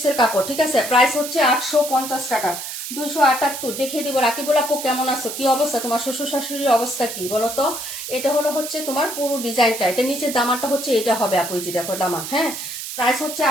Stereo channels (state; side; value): noise; right; hiss, 7 dB below the sound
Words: কাপড়, ঠিক আছে? প্রাইস হচ্ছে 850 টাকা। 278 দেখিয়ে দিব। রাকিবুল আপু কেমন আছো? কি অবস্থা তোমার? শ্বশুর শাশুড়ির অবস্থা কি বলো তো? এটা হলো হচ্ছে তোমার পুরো ডিজাইনটা, এটা নিচের দামানটা হচ্ছে এটা হবে আপু। এই যে দেখো দামান, হ্যাঁ প্রাইস হচ্ছে